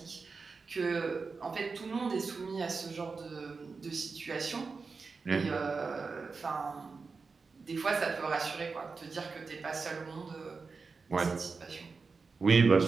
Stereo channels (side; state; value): left; quieter; 4.6 dB